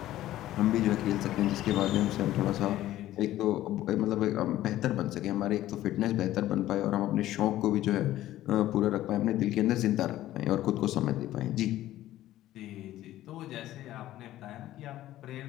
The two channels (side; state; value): right; quieter; 14.3 dB